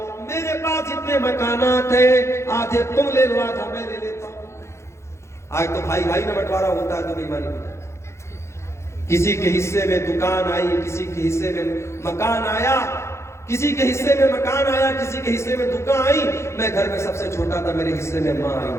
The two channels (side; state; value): right; late; 0.13 ms